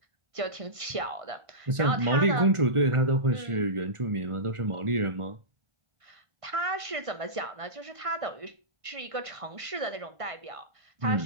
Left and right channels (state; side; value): late; left; 1.5 ms